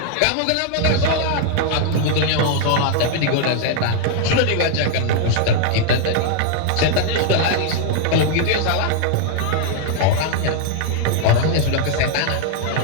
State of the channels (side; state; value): both; different; correlation 0.00